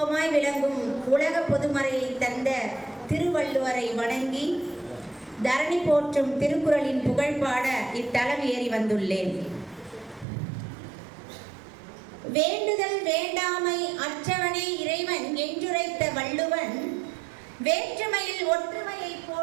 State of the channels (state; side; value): drops out; left; at 10.2 s